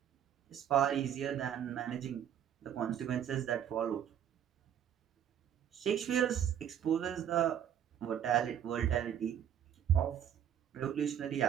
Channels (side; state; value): left; quieter; 9.6 dB